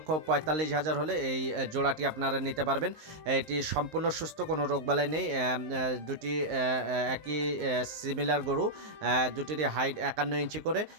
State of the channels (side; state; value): left; late; 19 ms